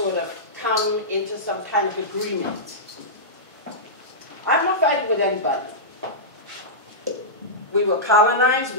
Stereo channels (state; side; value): normal; both; correlation -0.13